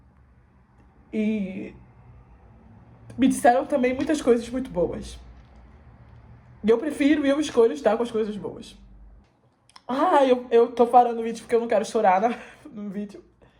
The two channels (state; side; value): identical; both; correlation 1.00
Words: E me disseram também muitas coisas muito boas. E eu prefiro e eu escolho estar com as coisas boas. Eu tô parando o vídeo porque eu não quero chorar no vídeo.